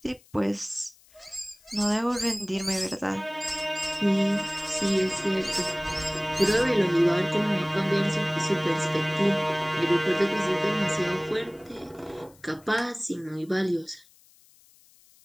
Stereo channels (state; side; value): noise; left; hiss, 29 dB below the sound